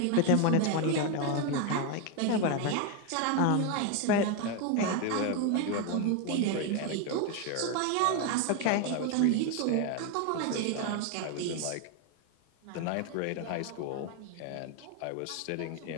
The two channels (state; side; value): different; both; correlation 0.01